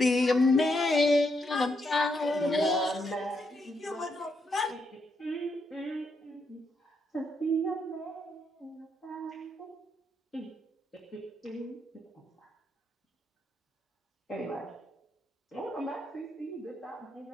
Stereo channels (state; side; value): normal; both; correlation 0.79